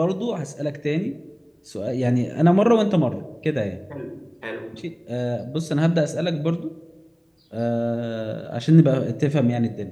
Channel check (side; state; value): both; identical; correlation 1.00